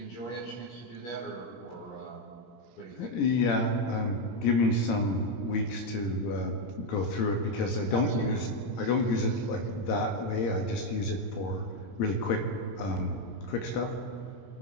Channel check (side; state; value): right; late; 17 ms